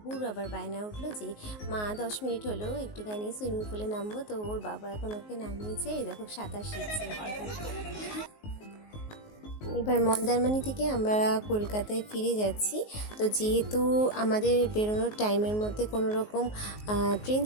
আবার বায়না উঠলো যে মা 10 মিনিট হলো একটুখানি সুইমিং পুলে নামবো। তো ওর বাবা এখন ওকে নামিয়েছে, এই দেখো সাঁতার শিখছে। এবার মন্দারমণি থেকে আমরা কলকাতায় ফিরে যাচ্ছি। তো যেহেতু আমাদের বেরোনোর টাইমের মধ্যে কোনো রকম ট্রেন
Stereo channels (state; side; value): late; right; 19 ms